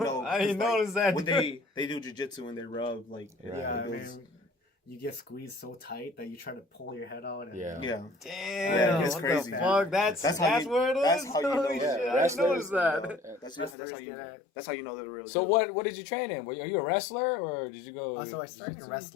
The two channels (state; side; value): drops out; right; at 13.8 s